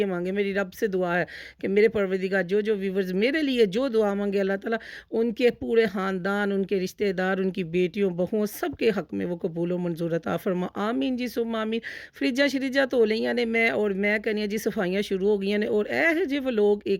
मांगे, मेरी रब से दुआ है कि मेरे परवरदिगार जो व्यूवर्स मेरे लिए जो दुआ मांगे अल्लाह ताला उनके पूरे ख़ानदान, उनके रिश्तेदार, उनकी बेटियों बहुओं सबके हक़ में वो कबूल व मंजूर अता फरमा। आमीन जी सुम्मा आमीन। फ्रिज्जां शरिज्जां धो लईयां ने मैं, और मैं कहनी जी सफाइयां शुरू हो गई ने। और ऐ जे व्लॉग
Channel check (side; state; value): both; identical; correlation 1.00